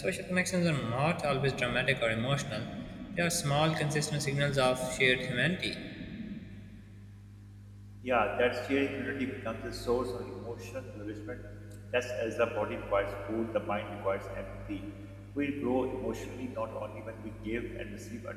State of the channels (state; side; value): identical; both; correlation 1.00